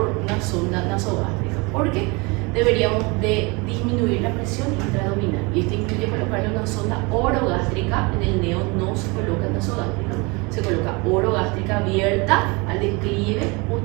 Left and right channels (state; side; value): quieter; left; 27.6 dB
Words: una sonda nasogástrica, porque deberíamos de disminuir la presión intraabdominal, y esto incluye colocarle una sonda orogástrica. En el neo no se coloca nasogástrica, se coloca orogástrica abierta al declive,